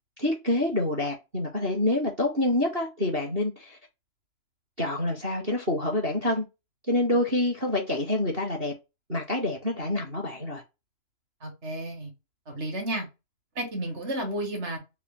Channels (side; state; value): left; late; 2.9 ms